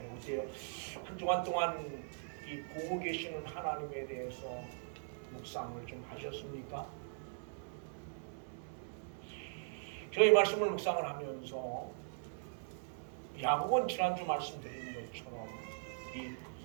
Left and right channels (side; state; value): left; silent; 51 dB below the other